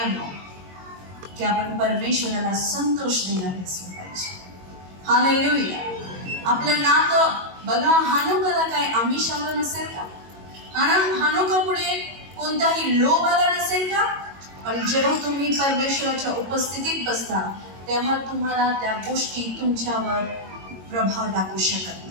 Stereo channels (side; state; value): left; late; 22 ms